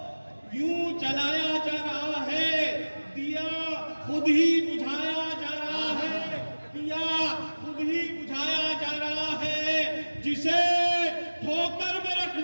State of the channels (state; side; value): inverted; both; correlation -1.00